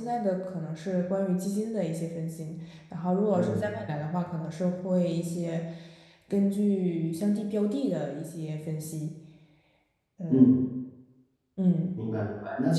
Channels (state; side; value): identical; both; correlation 1.00